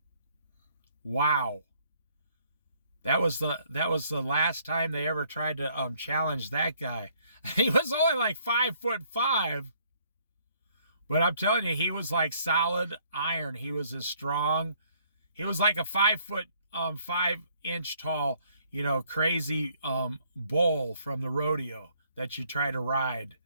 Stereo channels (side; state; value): both; inverted; correlation -0.65